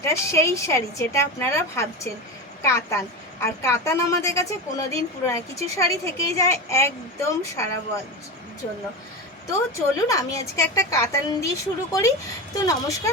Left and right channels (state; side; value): normal; both; correlation 0.23